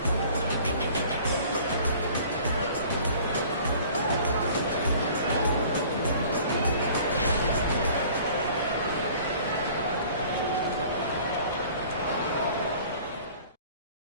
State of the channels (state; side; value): inverted; both; correlation -0.49